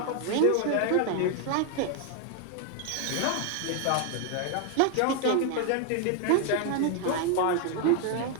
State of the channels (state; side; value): different; both; correlation 0.00